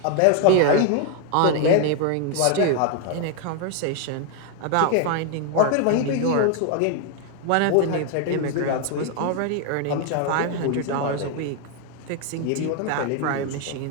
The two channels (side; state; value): both; different; correlation 0.00